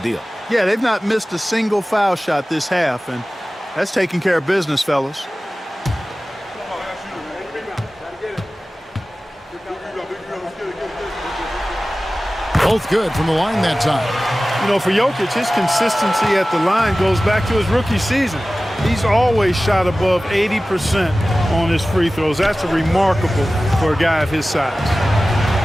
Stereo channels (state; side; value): normal; both; correlation 0.96